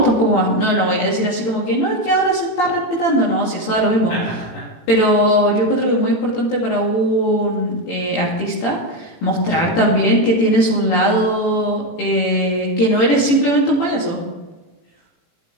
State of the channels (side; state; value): right; late; 18 ms